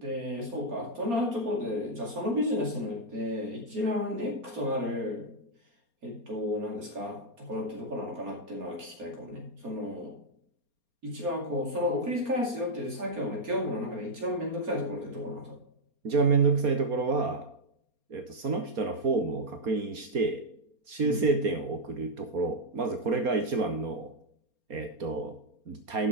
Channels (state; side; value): late; left; 4.3 ms